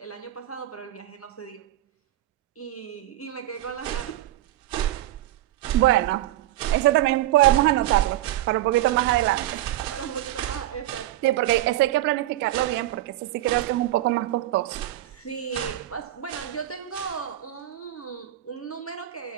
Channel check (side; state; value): left; quieter; 14.4 dB